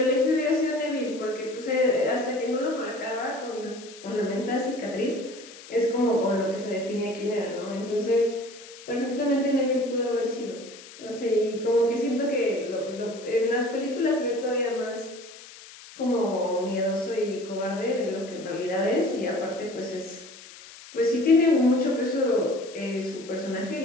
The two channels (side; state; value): left; noise; hiss, 18 dB below the sound